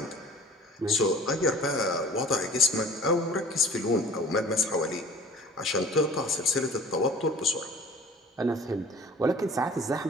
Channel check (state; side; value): normal; both; correlation 0.46